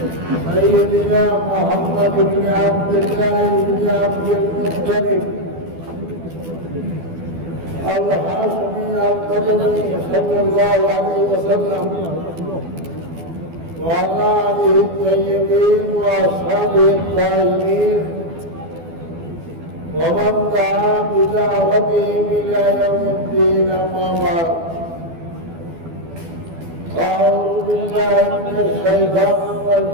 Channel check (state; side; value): late; left; 12 ms